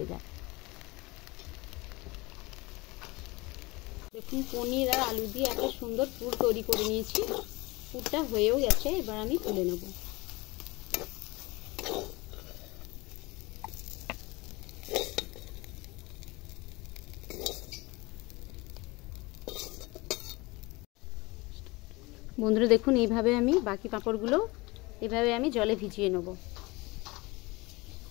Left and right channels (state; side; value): quieter; right; 23.5 dB